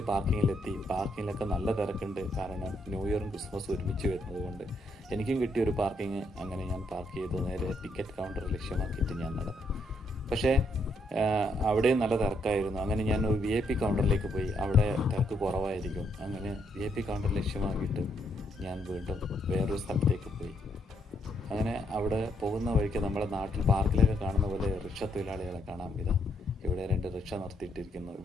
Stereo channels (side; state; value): both; normal; correlation 0.75